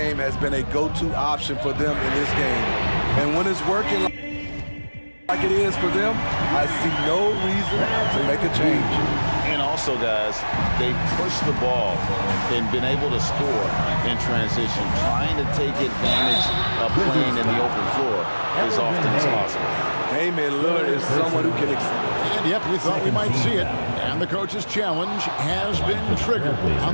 has been a go-to option for them in this game. And when it's working like it is for them, I see no reason to make a change. And also, guys, they push the ball and been able to score in transition, trying to take advantage of playing in the open floor as often as possible. Damian Lillard is someone who can... And yep, we thought we might see it. And the coach's challenge has been triggered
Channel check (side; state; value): both; inverted; correlation -1.00